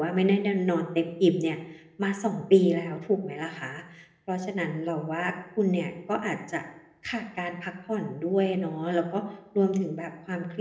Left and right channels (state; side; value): identical; both; correlation 1.00